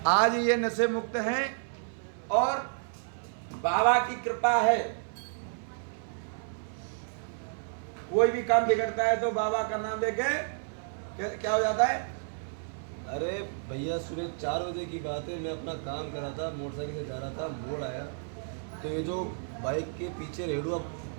आज ये नशे मुक्त हैं और बाबा की कृपा है। कोई भी काम बिगड़ता है तो बाबा का नाम लेके क्या हो जाता है। अरे भैया सुबह 4 बजे की बात है, मैं अपना काम कर रहा था, मोटरसाइकिल से जा रहा था, मोड़ आया तो ये जो बाइक के पीछे रेडुआ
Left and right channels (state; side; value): silent; left; 57 dB below the other